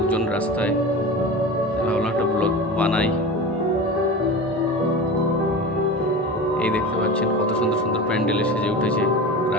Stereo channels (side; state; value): both; normal; correlation 0.31